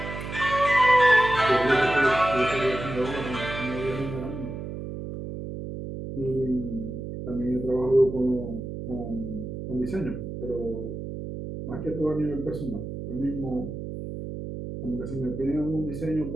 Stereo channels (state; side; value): noise; right; hum, 7 dB below the sound